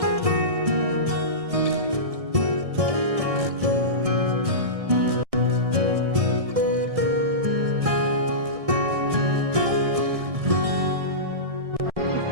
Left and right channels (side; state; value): left; late; 1.6 ms